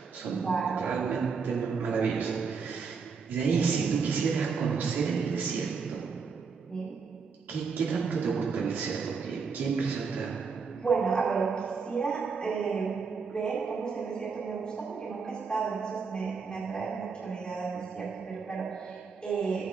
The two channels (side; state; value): left; quieter; 5.3 dB